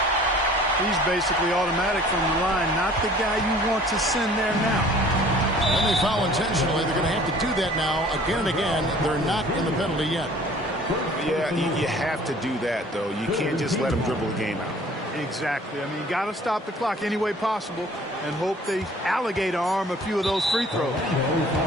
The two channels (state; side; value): normal; both; correlation 0.51